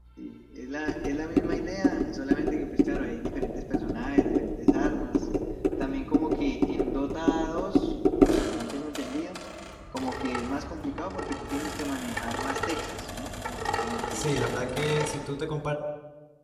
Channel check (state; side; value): identical; both; correlation 1.00